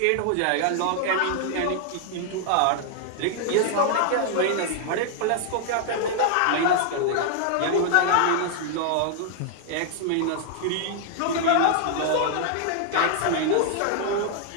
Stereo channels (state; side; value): different; both; correlation 0.00